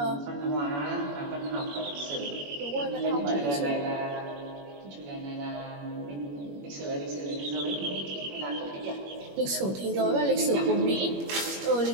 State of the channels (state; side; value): late; left; 21 ms